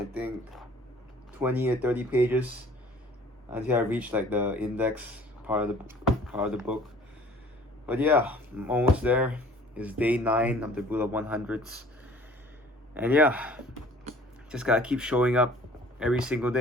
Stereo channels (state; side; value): normal; both; correlation 0.51